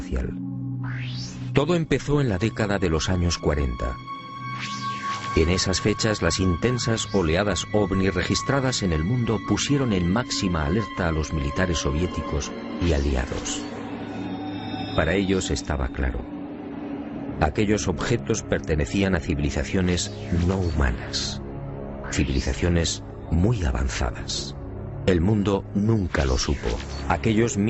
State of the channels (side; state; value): both; identical; correlation 1.00